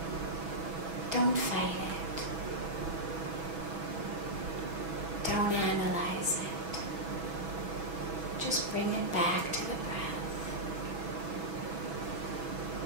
Don't fight it. Don't analyze it. Just bring it back to the breath.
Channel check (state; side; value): late; left; 6.1 ms